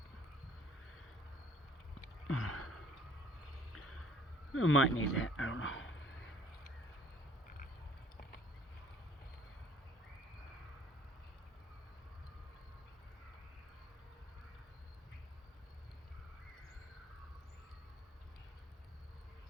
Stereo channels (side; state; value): both; normal; correlation 0.56